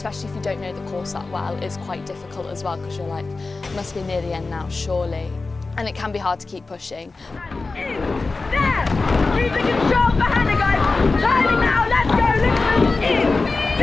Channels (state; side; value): quieter; right; 3.7 dB